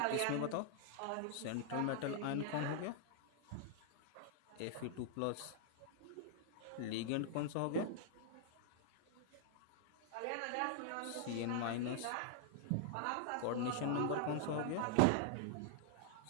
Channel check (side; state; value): both; different; correlation -0.01